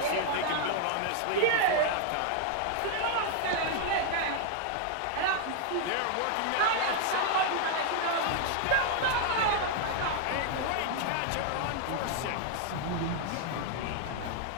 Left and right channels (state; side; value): different; both; correlation 0.00